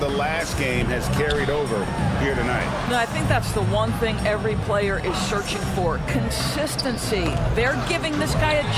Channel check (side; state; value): both; identical; correlation 1.00